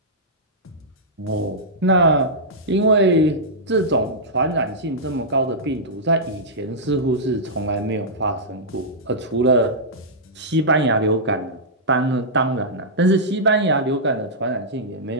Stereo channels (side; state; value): both; normal; correlation -0.11